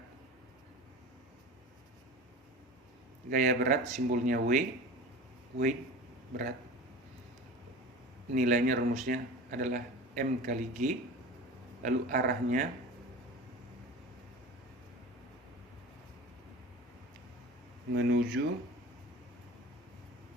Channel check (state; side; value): normal; both; correlation 0.35